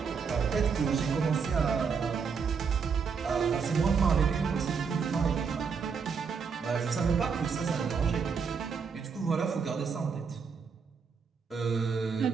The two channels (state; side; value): quieter; left; 5.8 dB